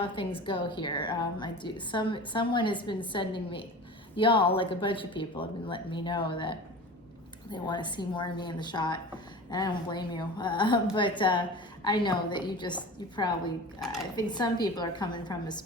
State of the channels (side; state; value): both; normal; correlation 0.35